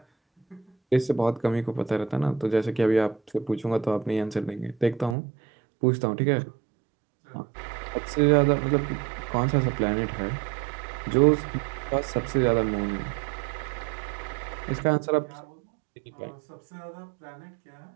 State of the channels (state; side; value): drops out; left; at 5.2 s